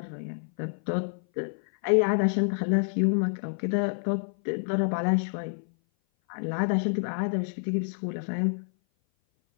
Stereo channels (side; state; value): right; silent; 57 dB below the other